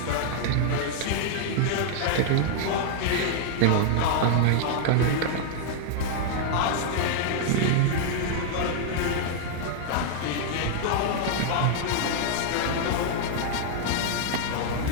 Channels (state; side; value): different; both; correlation -0.01